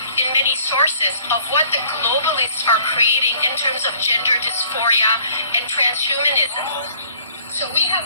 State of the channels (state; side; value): inverted; both; correlation -0.57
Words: in many sources of what the globalists are creating in terms of gender dysphoria and transhumanism. So we have